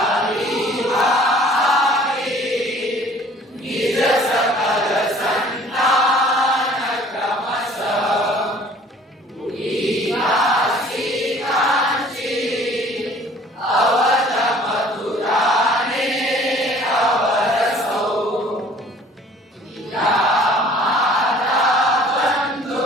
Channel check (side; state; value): both; normal; correlation 0.52